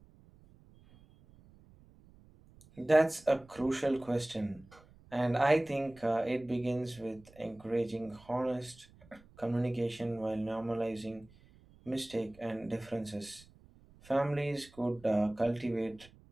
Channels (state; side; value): noise; right; rumble, 25 dB below the sound